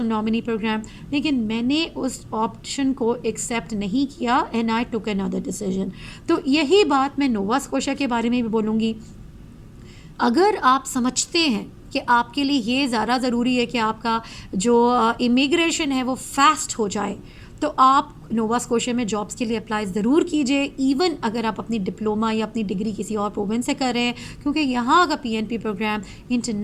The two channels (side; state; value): both; identical; correlation 1.00